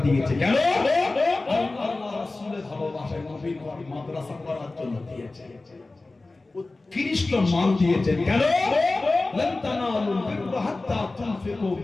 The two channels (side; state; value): right; quieter; 3.2 dB